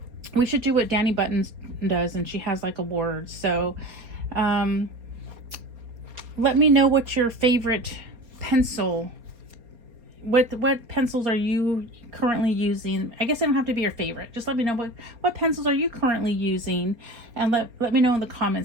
we should do what Danny Buttons does, and she has like awards. So let me know what your favorite pencil, what pencils are you currently using. I guess they don't have to be your favorite. Just let me know what pencils are you currently using, and let me know in the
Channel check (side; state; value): left; late; 4.3 ms